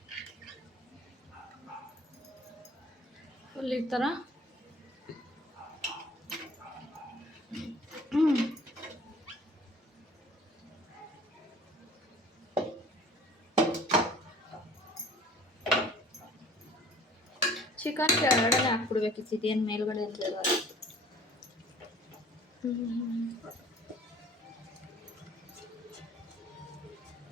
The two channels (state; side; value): normal; both; correlation 0.49